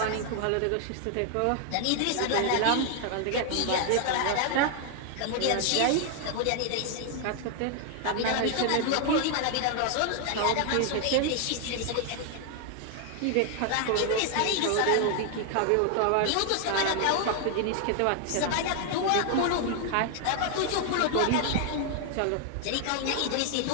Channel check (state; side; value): different; both; correlation 0.00